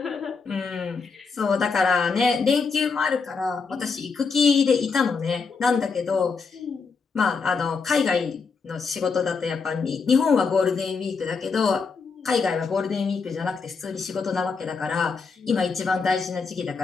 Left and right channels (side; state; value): right; quieter; 5.0 dB